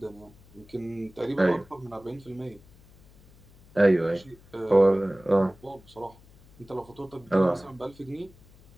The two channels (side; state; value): left; noise; hum, 25 dB below the sound